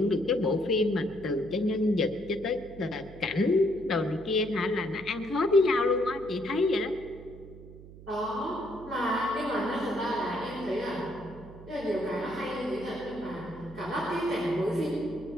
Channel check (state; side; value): noise; right; hum, 17 dB below the sound